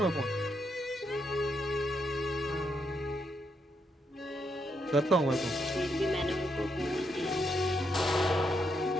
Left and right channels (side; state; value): both; normal; correlation 0.79